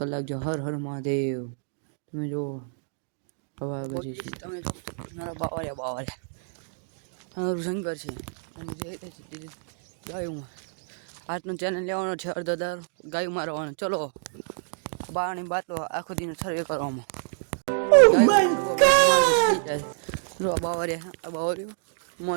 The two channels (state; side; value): silent; left; digital silence